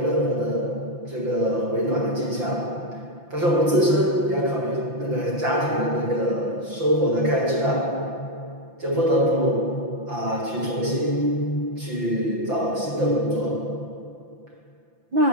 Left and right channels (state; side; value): late; left; 5.9 ms